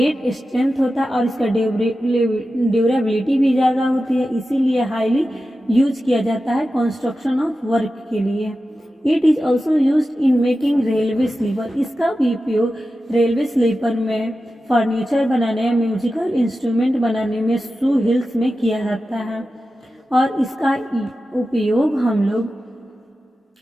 स्ट्रेंथ होता है और इसका ड्यूरेबिलिटी भी ज़्यादा होती है, इसीलिए हाईली यूज किया जाता है कंस्ट्रक्शन ऑफ वर्क के लिए। It is also use in making railway sleeper. इसका भी उपयोग रेलवे स्लीपर में, फर्नीचर बनाने, म्यूजिकल इंस्ट्रूमेंट बनाने में, शू हिल्स में किया जाता है। और इसका उपयोग हम लोग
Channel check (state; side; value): normal; both; correlation 0.93